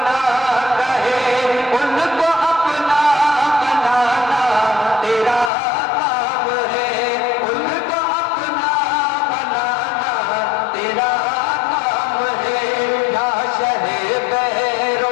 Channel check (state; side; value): drops out; right; at 5.5 s